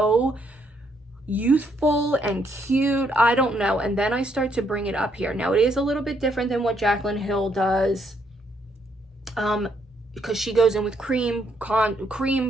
youthful and cute. I don't know. And then I start to bring it up here. Now it is a little bit different than what Jaclyn Hill does, because she goes in with cream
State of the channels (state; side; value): normal; both; correlation 0.72